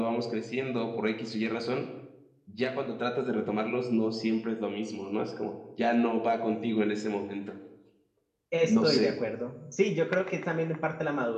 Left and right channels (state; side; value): identical; both; correlation 1.00